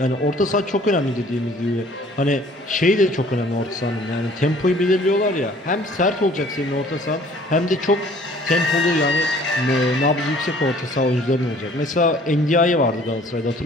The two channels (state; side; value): normal; both; correlation 0.54